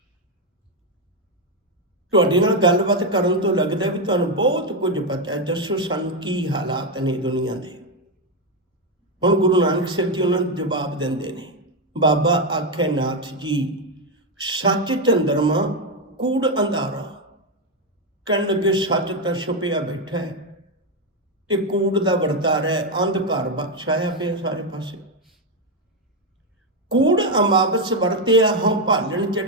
ਤੁਹਾਡੇ ਨਾਲ ਗੱਲਬਾਤ ਕਰਨ ਤੋਂ ਲੱਗਦਾ ਵੀ ਤੁਹਾਨੂੰ ਬਹੁਤ ਕੁਝ ਪਤਾ ਹੈ, ਦੱਸੋ ਸਾਨੂੰ ਕੀ ਹਾਲਾਤ ਨੇ ਦੁਨੀਆ ਦੇ। ਹੁਣ ਗੁਰੂ ਨਾਨਕ ਸਾਹਿਬ ਜੀ ਉਹਨਾਂ ਨੂੰ ਜਵਾਬ ਦਿੰਦੇ ਨੇ। ਬਾਬਾ ਆਖੇ ਨਾਥ ਜੀ ਸੱਚ ਚੰਦਰਮਾ ਕੂੜ ਅੰਧਾਰਾ। ਕਹਿਣ ਲੱਗੇ ਸੱਚ ਤਾਂ ਛੁਪਿਆ ਬੈਠਾ ਹੈ ਤੇ ਕੂੜ ਦਾ ਵਰਤਾਰਾ ਹੈ, ਅੰਧਕਾਰ ਛਾਇਆ ਪਿਆ ਸਾਰੇ ਪਾਸੇ। ਕੂੜ ਅਮਾਵਸ ਵਰਤਿਆ ਹਉ ਭਾਲਣ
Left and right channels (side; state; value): both; normal; correlation 0.06